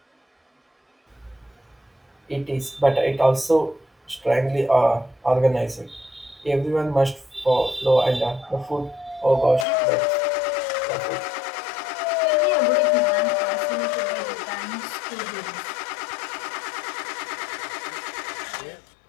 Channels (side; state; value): right; drops out; at 9.7 s